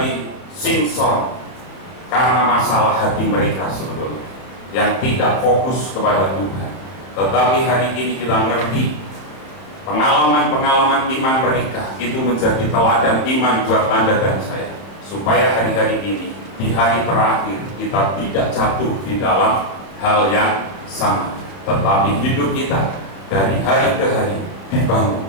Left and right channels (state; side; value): late; right; 30 ms